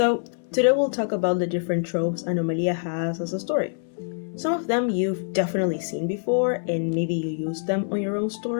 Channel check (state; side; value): silent; right; 62 dB below the other